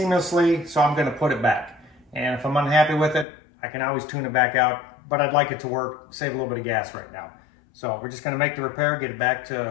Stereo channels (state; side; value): drops out; right; at 3.2 s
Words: so I'm gonna put it back. And if I'm unhappy with it, I can always tune it back out, but I'd like it to work, save a little bit of gas right now. So we're just gonna make the repair, get it back